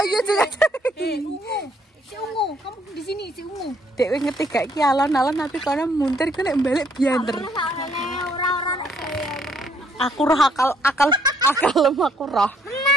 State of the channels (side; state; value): both; normal; correlation 0.67